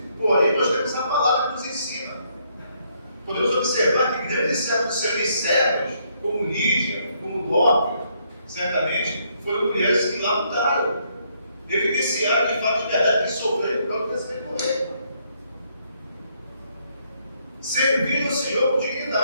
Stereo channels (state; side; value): inverted; both; correlation -0.72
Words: Porém, nós temos a palavra que nos ensina. Podemos observar que grandes servos do Senhor e servos, como Lídia, como Dorcas, certamente, foram mulheres que lá lutaram, evidenciaram de fato de verdade que sofreram por causa desse temporeiro. Serviram o Senhor com